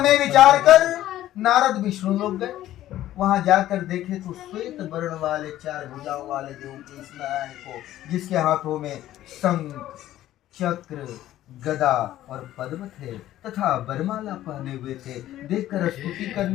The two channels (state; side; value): quieter; right; 13.6 dB